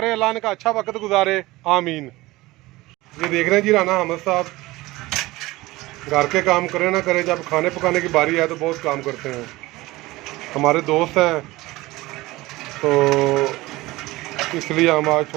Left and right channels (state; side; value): quieter; left; 19.6 dB